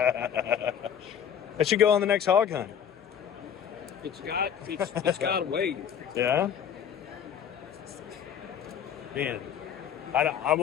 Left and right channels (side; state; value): right; quieter; 8.6 dB